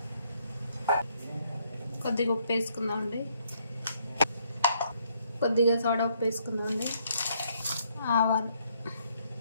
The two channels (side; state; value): both; inverted; correlation -0.69